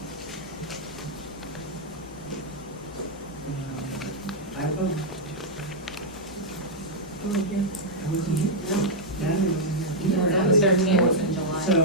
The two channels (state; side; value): normal; both; correlation -0.04